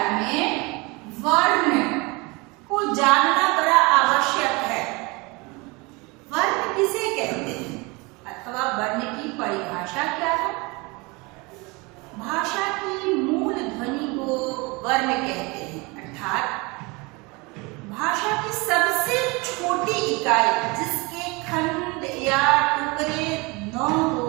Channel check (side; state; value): left; quieter; 26.3 dB